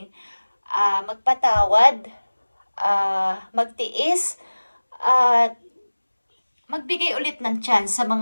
magpatawad, magtiis, at magbigay ulit ng chance sa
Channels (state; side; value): inverted; both; correlation -1.00